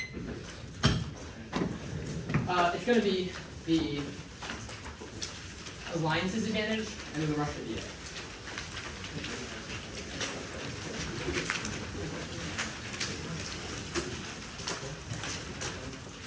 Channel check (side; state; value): both; identical; correlation 1.00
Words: It's going to be the alliance's advantage and then the Russia DA.